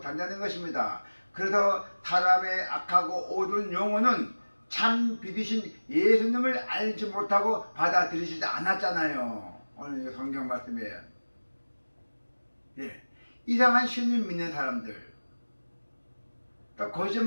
것입니다. 그래서 사람의 악하고 어두운 영혼은 참 빛이신 예수님을 알지 못하고 받아들이지 않았잖아요. 오늘 성경 말씀이에요. 예. 이상한 신을 믿는 사람들, 또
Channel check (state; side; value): inverted; both; correlation -1.00